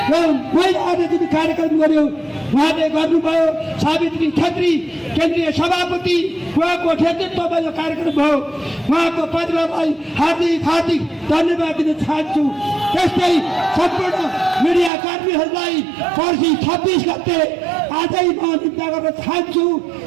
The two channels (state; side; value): drops out; left; at 14.9 s